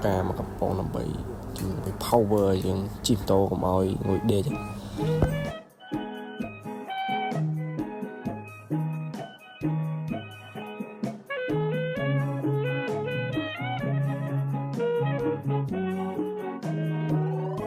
កាមកកំប៉ុងដើម្បីជំនួយ power យើងជិះម៉ូតូកុំឲ្យងុយដេក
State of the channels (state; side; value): identical; both; correlation 1.00